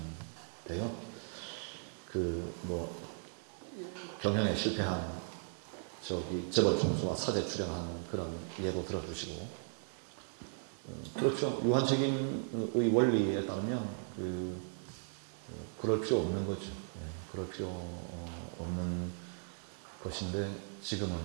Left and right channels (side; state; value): left; silent; 53 dB below the other